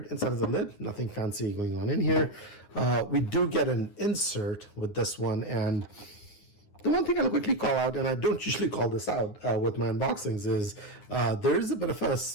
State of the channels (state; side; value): late; right; 9.7 ms